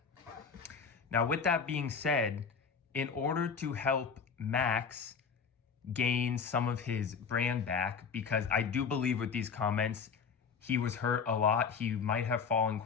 Now, with that being said, in order to help Max gain some of his brand back, because I do believe with these comments, he was hurt a lot. He might have fallen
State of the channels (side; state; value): right; quieter; 6.0 dB